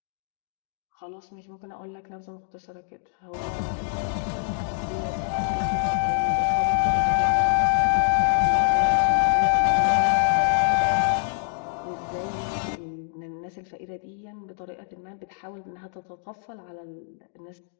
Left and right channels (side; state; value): right; silent; digital silence